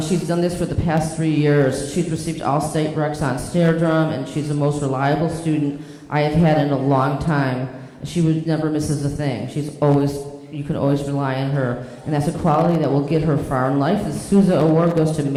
She's done this for the past 3 years. She's received all state recs on snare drum, and she's the most reliable student I have had in a long time. She never misses a thing. You can always rely on her, and that's a quality that will get her far in life. The Sousa Award goes to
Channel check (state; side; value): identical; both; correlation 1.00